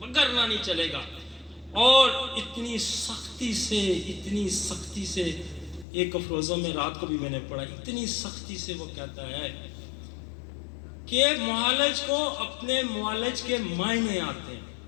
वरना नहीं चलेगा। और इतनी सख्ती से एक अफरोज़ा में रात को भी मैंने पढ़ा, इतनी सख्ती से वो कहता है कि मुआलिज को अपने मुआलिज के मायने आते हैं,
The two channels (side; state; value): right; drops out; at 5.9 s